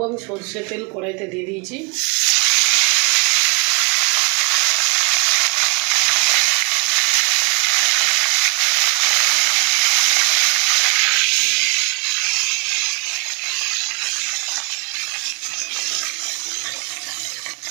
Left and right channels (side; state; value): left; quieter; 35.2 dB